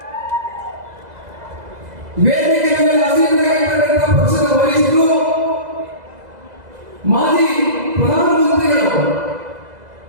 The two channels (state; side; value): late; left; 2.0 ms